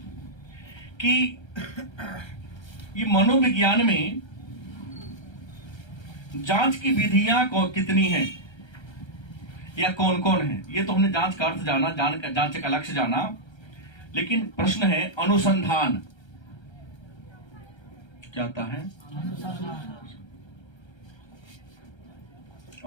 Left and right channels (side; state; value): right; late; 1.3 ms